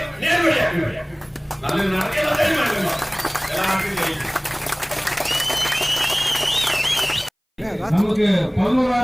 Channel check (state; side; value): identical; both; correlation 1.00